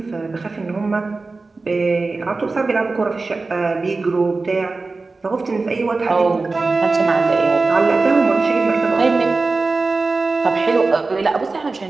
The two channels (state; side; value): quieter; left; 3.7 dB